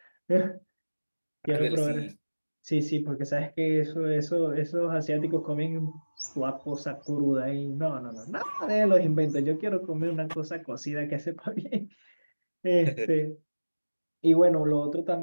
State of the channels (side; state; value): both; inverted; correlation -1.00